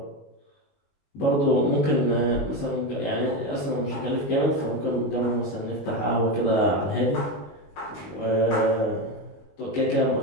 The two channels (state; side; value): late; right; 21 ms